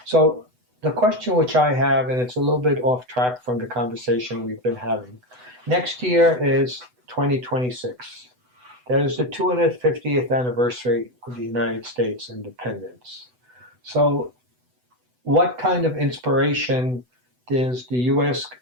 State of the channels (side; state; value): left; late; 8.0 ms